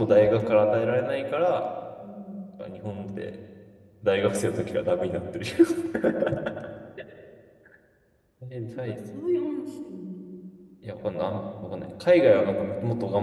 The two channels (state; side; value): identical; both; correlation 1.00